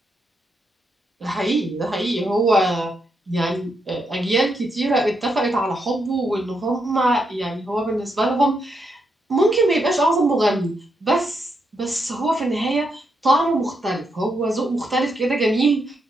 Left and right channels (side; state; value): both; normal; correlation 0.81